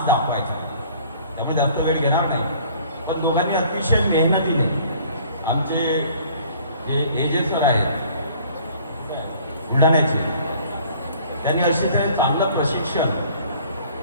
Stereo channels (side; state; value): both; inverted; correlation -0.53